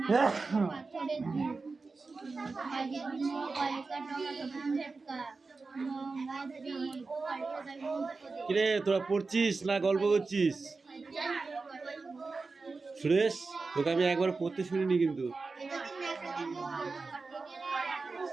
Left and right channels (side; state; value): left; quieter; 4.0 dB